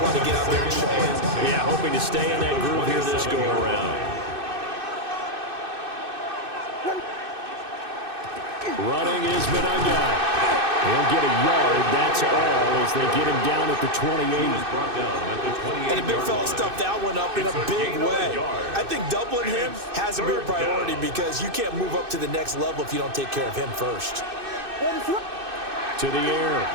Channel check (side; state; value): left; late; 2.6 ms